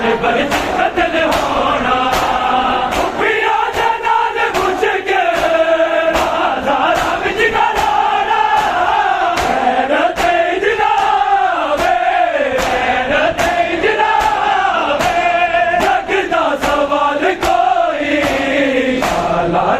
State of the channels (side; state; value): right; noise; hum, 28 dB below the sound